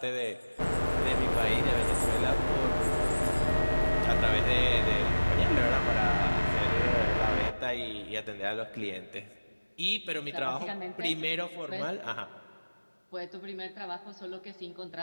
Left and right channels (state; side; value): inverted; both; correlation -1.00